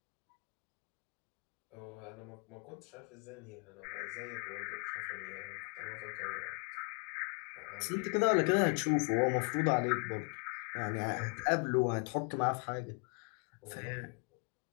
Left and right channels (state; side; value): quieter; right; 35.6 dB